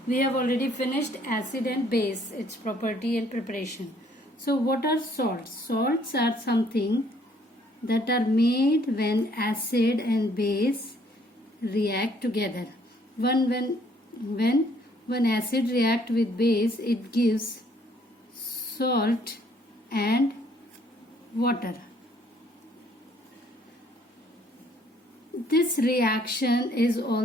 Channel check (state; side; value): normal; both; correlation 0.63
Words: We have already finished acid and base, its property and preparation. So what are salts? Salts are something that are made when acid and base react together. When acid react with base, it gives salt and water. This reaction is